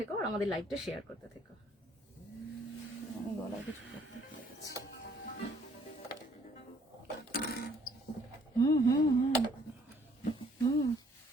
আর আমাদের লাইভটা শেয়ার করতে থেকো। আমি গলায় কিছু করতে পেরেছি। হুম হুম হুম হুম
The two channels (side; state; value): both; normal; correlation 0.62